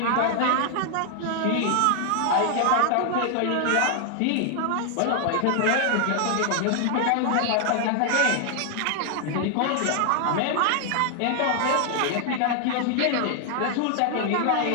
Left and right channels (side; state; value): both; different; correlation 0.00